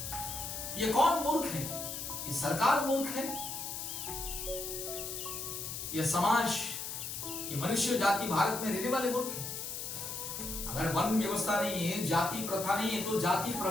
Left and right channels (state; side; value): noise; left; hiss, 6 dB below the sound